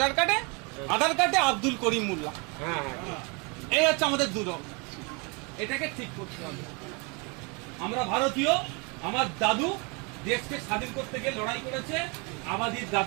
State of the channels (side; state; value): left; quieter; 31.3 dB